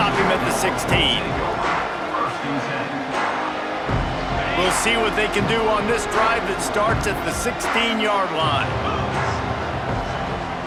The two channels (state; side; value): identical; both; correlation 1.00